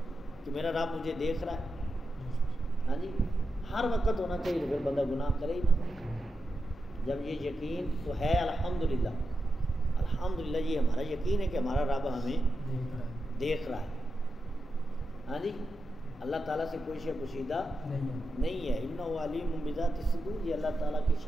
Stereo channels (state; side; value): normal; both; correlation 0.88